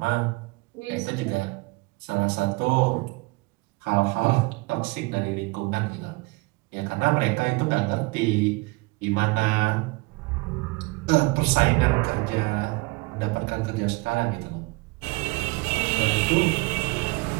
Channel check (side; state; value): left; quieter; 25.9 dB